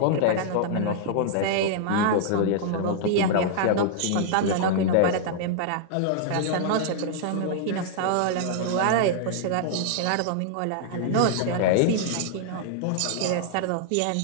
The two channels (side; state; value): both; different; correlation -0.01